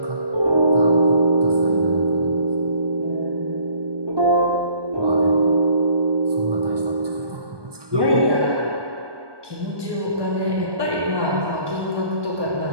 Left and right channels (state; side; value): late; left; 1.2 ms